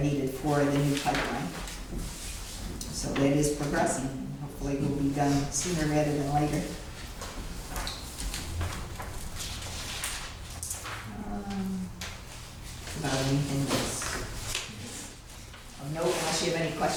needed for the new pipeline. So that is progressing, and hopefully will be done sooner rather than later. About anything else? No, unless you have any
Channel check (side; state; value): both; identical; correlation 1.00